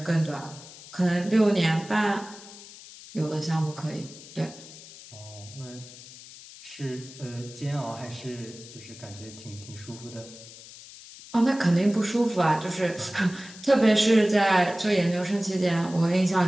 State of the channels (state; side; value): noise; left; hiss, 17 dB below the sound